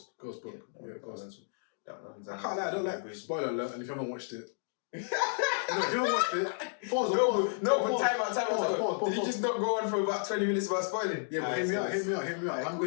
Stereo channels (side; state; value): right; silent; digital silence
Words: Book. Yeah, Ghost. I can't lie. I don't like spoiler alert. And if you haven't watched it. No, if you haven't watched it, pause. But time out. Did you just not go on for about 20 minutes about spoiling? Yeah, but hear me out. I'm